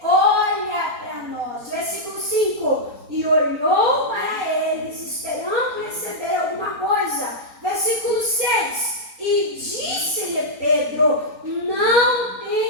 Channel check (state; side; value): late; left; 4.3 ms